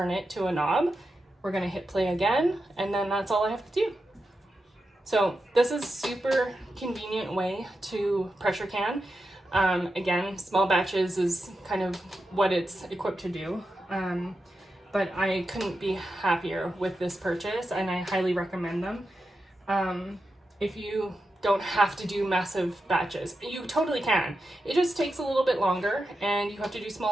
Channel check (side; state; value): both; normal; correlation 0.89